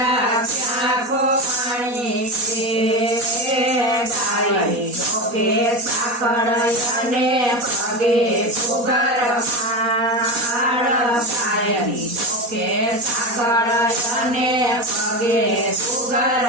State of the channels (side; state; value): left; late; 4.2 ms